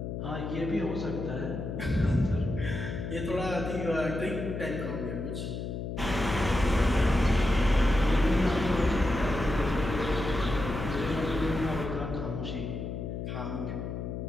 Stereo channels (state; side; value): noise; left; hum, 5 dB below the sound